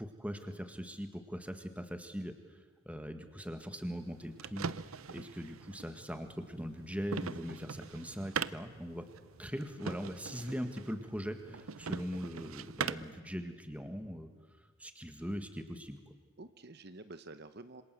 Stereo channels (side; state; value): both; normal; correlation 0.69